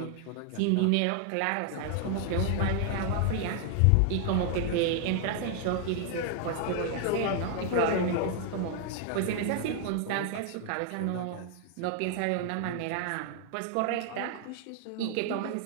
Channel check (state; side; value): different; both; correlation 0.00